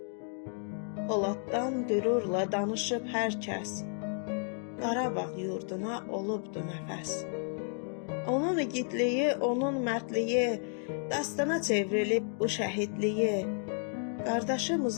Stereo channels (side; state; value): right; silent; 56 dB below the other